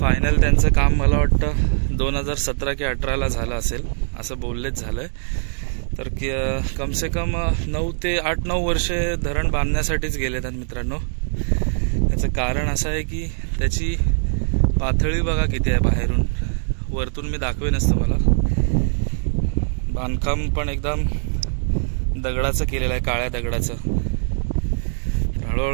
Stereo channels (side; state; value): left; silent; 64 dB below the other